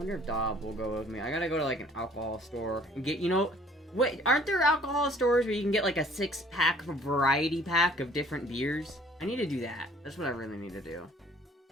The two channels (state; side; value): normal; both; correlation 0.55